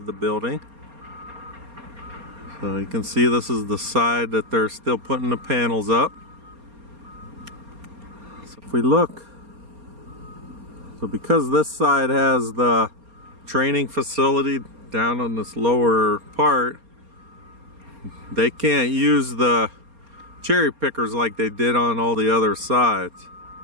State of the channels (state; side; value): late; left; 4.3 ms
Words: the building. So you can see this is the side that they're still putting the panels up. So if we look, so because this side has the training facility down on this lower part, they can't use the cherry pickers like they did on all the other sides.